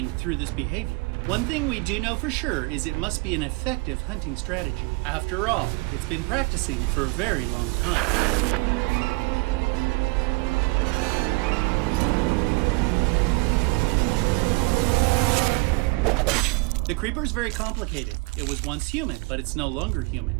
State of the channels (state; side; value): quieter; left; 27.2 dB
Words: through this behavior? One thing we do know for sure is it must be an effective hunting strategy. After all, it's been practicing for a very long time. The creeper is very complicated. It was once human, but it's no longer